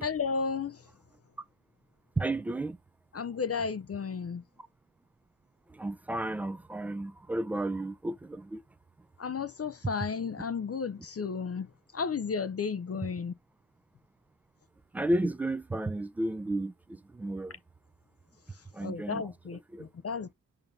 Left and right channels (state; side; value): normal; both; correlation 0.43